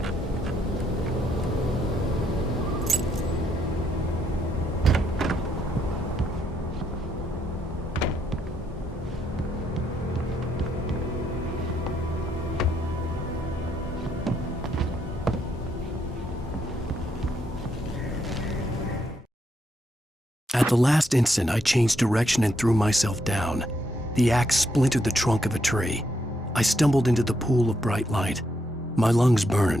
At the last instant, I changed direction and threw myself down. The axe splintered the trunk of a tree. I stumbled into the pool of bright light. My lungs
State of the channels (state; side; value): normal; both; correlation 0.76